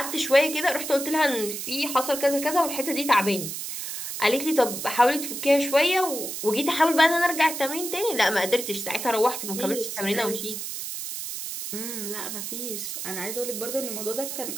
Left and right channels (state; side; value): noise; right; hiss, 6 dB below the sound